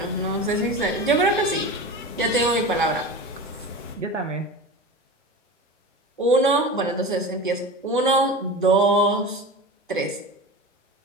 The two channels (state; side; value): normal; both; correlation 0.30